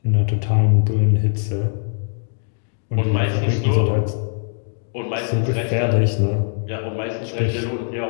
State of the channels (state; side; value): silent; right; digital silence